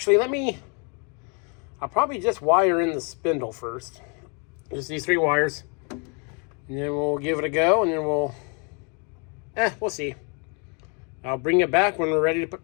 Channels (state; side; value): quieter; right; 35.3 dB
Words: I'll probably just wire in the spindle first. Just these 3 wires. And then we'll give it a go, and then we'll see. I'll bring it back when we're ready to put